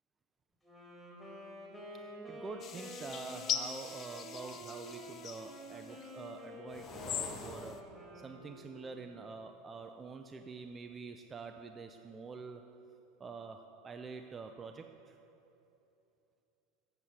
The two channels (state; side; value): normal; both; correlation 0.53